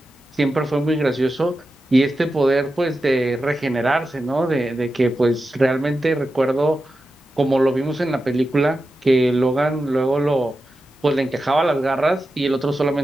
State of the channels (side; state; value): both; normal; correlation 0.91